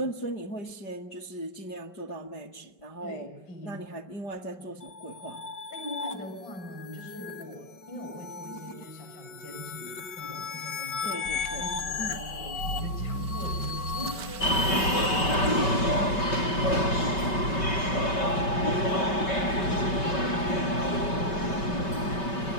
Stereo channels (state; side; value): late; right; 5.2 ms